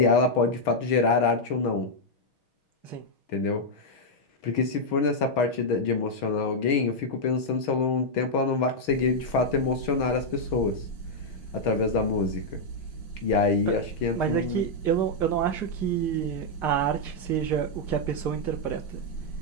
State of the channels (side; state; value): right; late; 6.3 ms